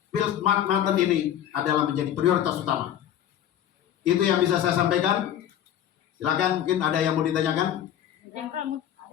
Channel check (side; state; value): right; quieter; 10.7 dB